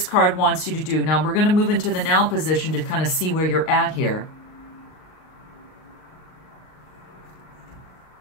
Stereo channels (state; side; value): late; right; 38 ms